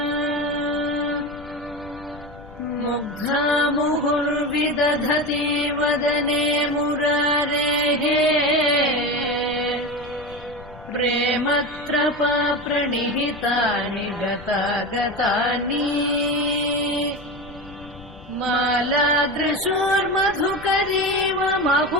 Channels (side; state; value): left; noise; rumble, 19 dB below the sound